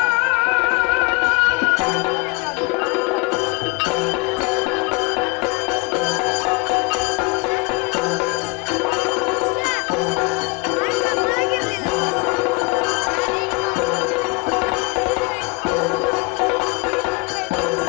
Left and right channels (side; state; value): right; quieter; 28.9 dB